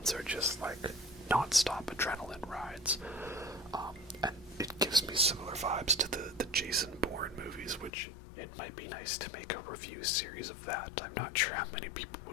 are just like non-stop adrenaline rides. And it gives me similar vibes to the Jason Bourne movies, which it might be nice to make a review series of that. I'm not sure how many people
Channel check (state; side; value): drops out; right; at 7.9 s